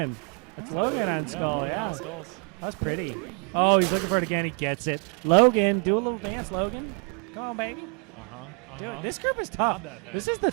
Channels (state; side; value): quieter; left; 39.0 dB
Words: It's Logan on yeah, skull. Logan Yeah. on skulls. That was pretty. Oh, he's looking for it again. He gets it. Logan, do a little dance, Logan. Come on, baby. Dude, this group is tough. Not that bad. This is the